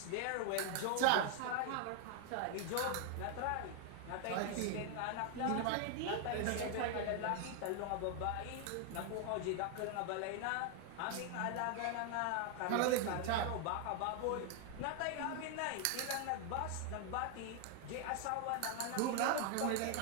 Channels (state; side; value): different; both; correlation 0.00